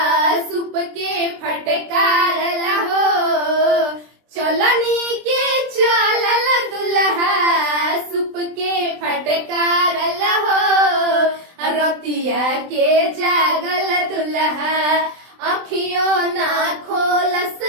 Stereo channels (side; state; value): left; late; 23 ms